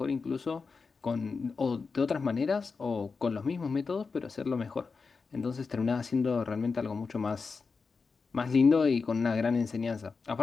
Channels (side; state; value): right; quieter; 4.7 dB